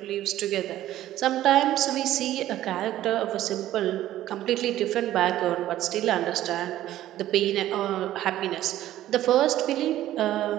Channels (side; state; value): left; quieter; 13.6 dB